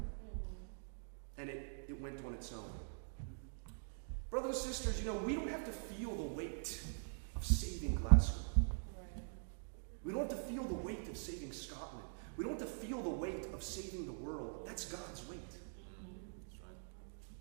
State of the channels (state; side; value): silent; left; digital silence